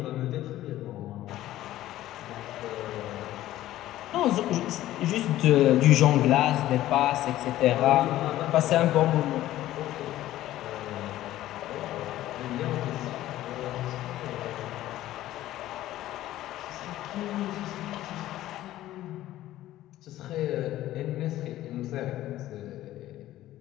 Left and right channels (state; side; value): quieter; right; 14.4 dB